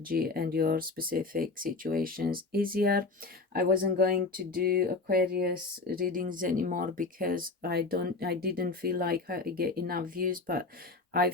and your specific situations easier. I wasn't going to do Aquarius readings anymore because I didn't feel like I get enough views, but I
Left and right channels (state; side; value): quieter; right; 3.7 dB